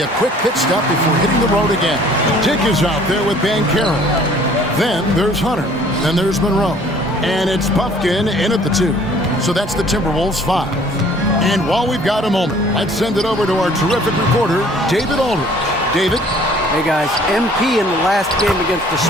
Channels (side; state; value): both; normal; correlation 0.55